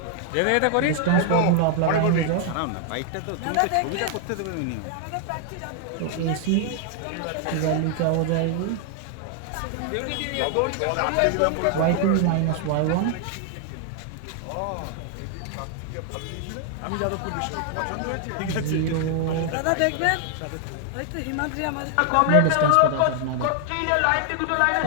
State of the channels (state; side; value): different; both; correlation 0.00